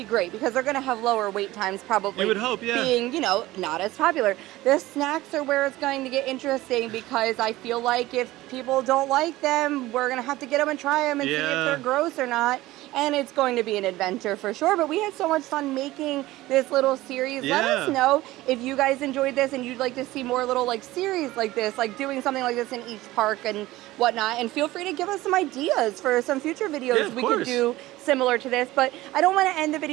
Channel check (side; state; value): left; quieter; 17.5 dB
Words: great because they're going to have lower wait times probably. You would hope, being, you know, not as popular. The snacks are where it's going to get interesting because I feel like if people don't like them, we're going to have to get them and try them and see if they're gross or not. and it's going to be an adventure for sure. But we had so much fun making this little series. Let us know if you guys enjoyed this and you'd like to see more little like series like this, like doing something like this in each park and whatnot. And feel free to give us some ideas for some future videos we could do similar to this. But I don't want to end the